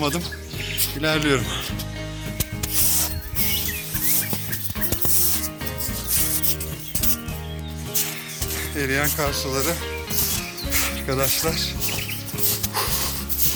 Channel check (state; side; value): identical; both; correlation 1.00